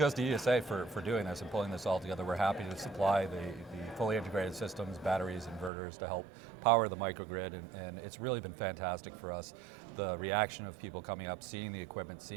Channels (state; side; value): drops out; left; at 5.7 s